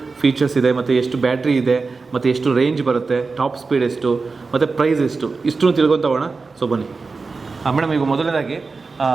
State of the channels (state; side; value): quieter; left; 4.2 dB